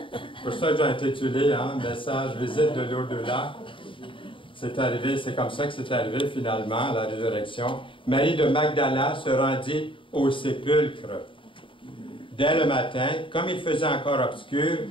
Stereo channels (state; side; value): late; right; 0.25 ms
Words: pour ça que j'ai intitulé, hein, message visite de l'au-delà. C'est arrivé, c'est comme ça que c'est arrivé finalement à la résurrection. Marie de Magdala se rendit au sépulcre dès le matin, comme il faisait encore obscur,